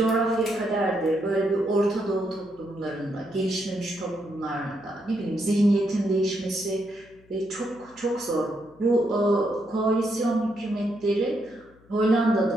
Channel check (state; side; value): noise; left; hum, 28 dB below the sound